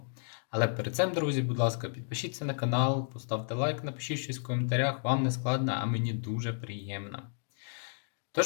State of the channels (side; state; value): right; silent; digital silence